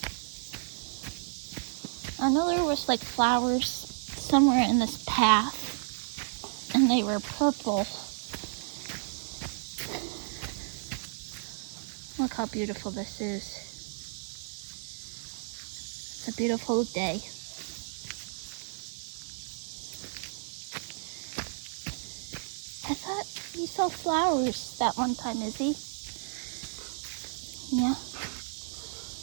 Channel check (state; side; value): silent; left; digital silence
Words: I know there was like flowers somewhere in this path, and they were purple. Look how beautiful this is. It's a beautiful day. I thought we saw flowers that one time, Izzy. Yeah.